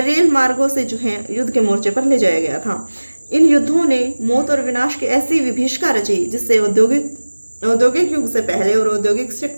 रेल मार्गों से जो है युद्ध के मोर्चे पर ले जाया गया था। इन युद्धों ने मौत और विनाश की ऐसी विभीषिका रची जिससे औद्योगिक युग से पहले और औद्योगिक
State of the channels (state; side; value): inverted; both; correlation -1.00